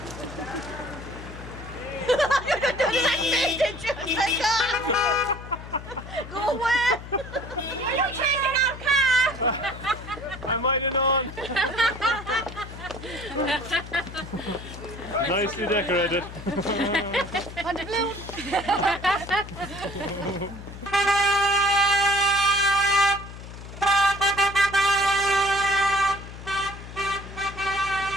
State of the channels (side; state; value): left; noise; hum, 13 dB below the sound